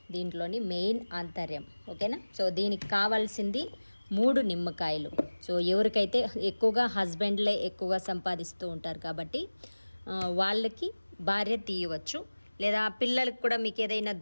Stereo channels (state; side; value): inverted; both; correlation -1.00